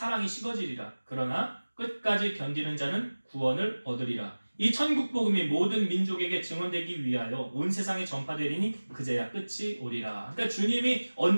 식어지리라. 그러나 끝까지 견디는 자는 구원을 얻으리라. 이 천국 복음이 모든 민족에게 증언되기 위하여 온 세상에 전파되리니 그제야 끝이 오리라. 그러니까 주님이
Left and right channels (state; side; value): inverted; both; correlation -1.00